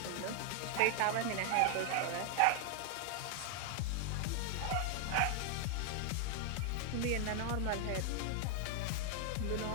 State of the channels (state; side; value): different; both; correlation 0.00